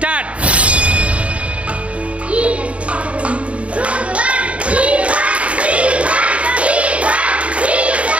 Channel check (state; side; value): late; left; 0.063 ms